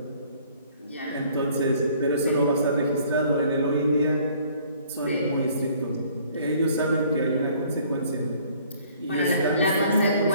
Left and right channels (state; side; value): inverted; both; correlation -0.57